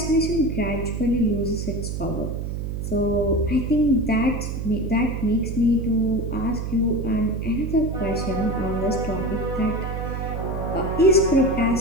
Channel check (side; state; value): right; noise; hum, 4 dB below the sound